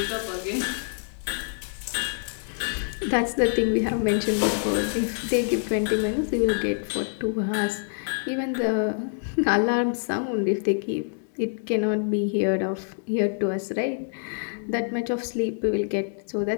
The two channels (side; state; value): right; silent; digital silence